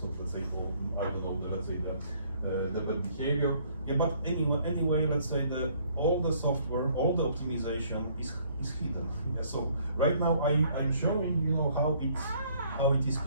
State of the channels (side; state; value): both; inverted; correlation -0.61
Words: of let's say, I don't know, the bad behavior. Yeah, but anyway, let's say all the software, all the optimization is hidden. Yeah, so right now I'm showing how it is